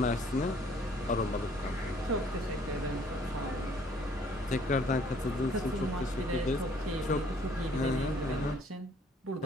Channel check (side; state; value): both; normal; correlation 0.60